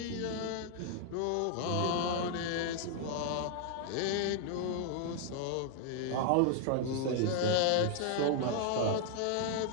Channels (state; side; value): different; both; correlation 0.00